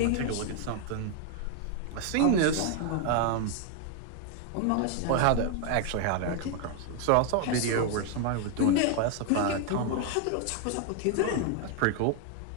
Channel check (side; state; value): both; different; correlation 0.01